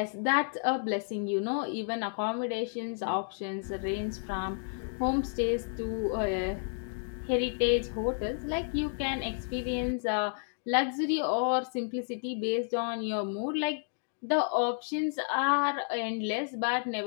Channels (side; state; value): right; silent; digital silence